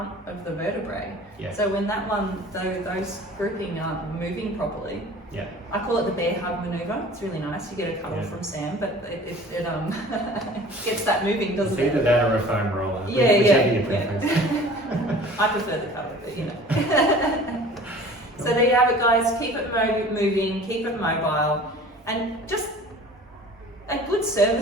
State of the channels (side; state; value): both; normal; correlation 0.45